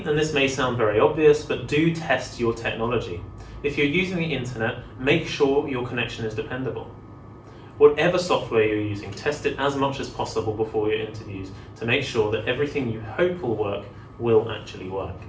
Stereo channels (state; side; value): identical; both; correlation 1.00